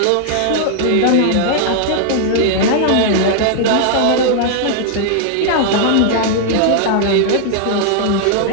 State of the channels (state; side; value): different; both; correlation -0.01